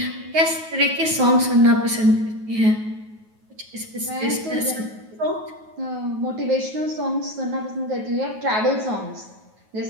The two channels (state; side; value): late; left; 9.3 ms